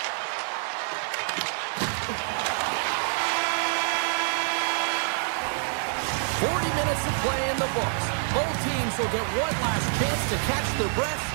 Minutes of play in the books. Both teams will get one last chance to catch their breath,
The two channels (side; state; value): left; silent; digital silence